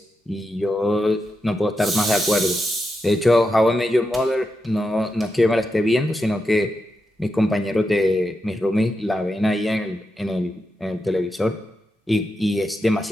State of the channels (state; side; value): normal; both; correlation 0.87